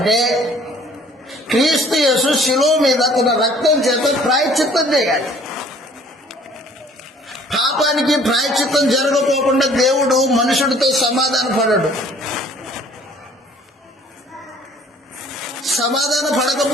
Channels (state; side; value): normal; both; correlation 0.54